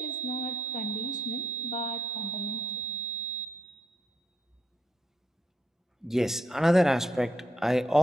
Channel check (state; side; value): normal; both; correlation 0.77